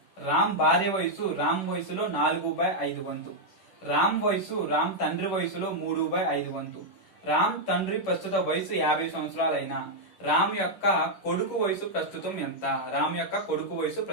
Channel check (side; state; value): right; late; 11 ms